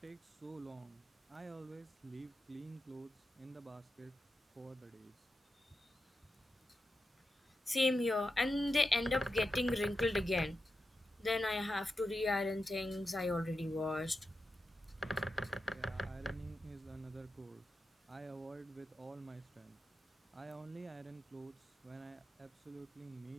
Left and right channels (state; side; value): normal; both; correlation 0.89